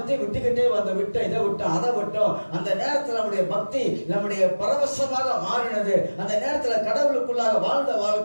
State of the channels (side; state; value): both; inverted; correlation -1.00